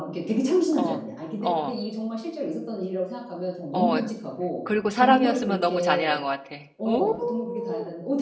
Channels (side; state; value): both; identical; correlation 1.00